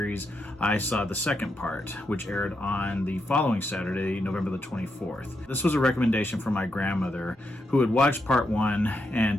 I saw the second part, which aired on the following Saturday, November the 24th. This was a recommendation from my grandmother, who had watched part one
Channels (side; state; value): both; normal; correlation 0.83